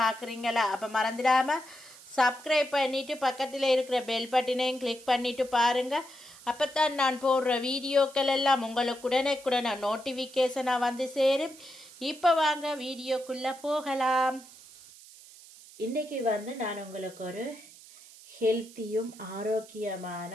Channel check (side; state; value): right; noise; hiss, 20 dB below the sound